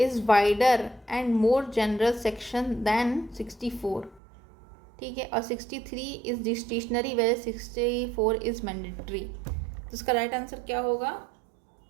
wider and more general section than 64, ठीक है। और 63 is discretionary where 64 is mandatory. तो इसका राइट आंसर क्या होगा,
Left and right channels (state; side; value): drops out; left; at 4.2 s